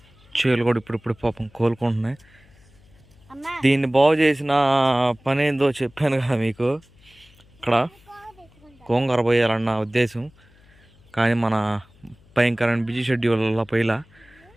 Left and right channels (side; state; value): left; noise; hum, 29 dB below the sound